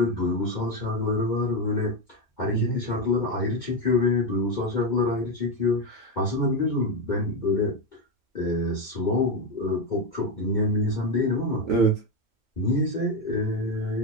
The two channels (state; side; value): normal; both; correlation 0.10